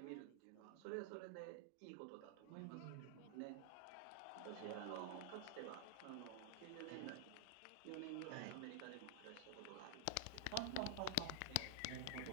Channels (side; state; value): both; different; correlation -0.01